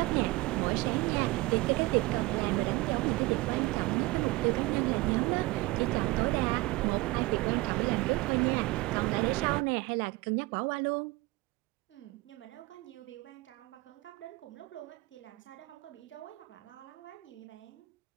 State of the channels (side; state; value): left; quieter; 21.1 dB